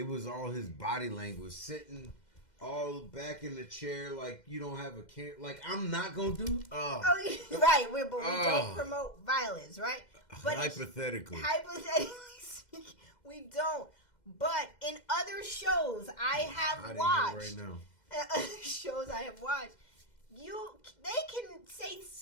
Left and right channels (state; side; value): late; right; 2.1 ms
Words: was all his body language, sitting all back in the chair like you don't have a care. Like, I'm not gonna do. Right. We don't promote violence, right? But hypothetically speaking, we don't. But in other shows I have watched, right now. Shows I have watched, they can say